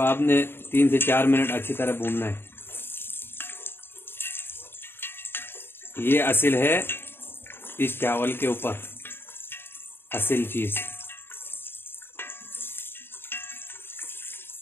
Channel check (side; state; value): right; late; 0.11 ms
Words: 3 से 4 मिनट अच्छी तरह भूनना है। ये असल है इस चावल के ऊपर, असल चीज।